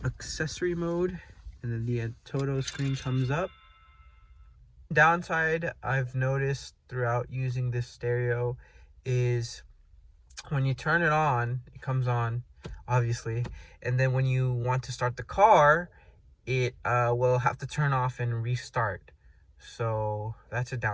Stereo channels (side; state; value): both; identical; correlation 1.00